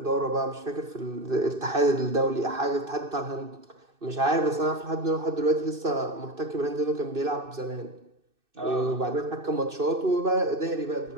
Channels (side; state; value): left; late; 2.6 ms